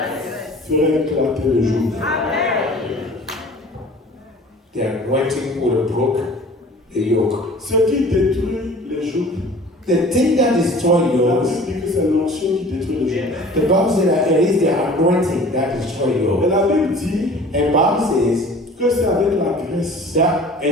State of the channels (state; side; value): normal; both; correlation 0.46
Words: ferait éclater le joug. The anointing would have broke the yoke. Ce qui détruit les jougs, The thing that destroys la yokes, Bible dit que c'est l'onction qui détruit les jougs. the Bible says that it is the anointing that destroys Et yokes. la Bible dit And Bible says que c'est avec la graisse that